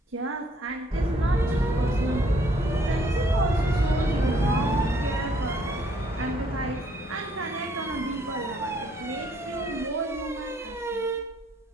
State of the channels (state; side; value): normal; both; correlation 0.65